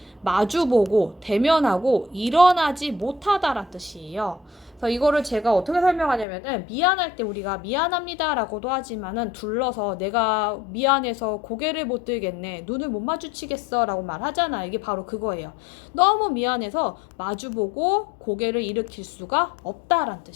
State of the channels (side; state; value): right; drops out; at 6.2 s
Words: 마주보고 대면하고 일어나지 못하다란 뜻이에요. 그래서 이거를 제가 어떻게 설명하냐면은 미안할 때 우리가 미안합니다 라고도 하지만은 둘러서 내가 미안해서 고개를 못 들겠네, 눈을 못 마주치겠어 라고 말하잖아요. 이게 바로 그거예요. 너무 미안해서 마주보고 고개를 일으킬 수가 없다란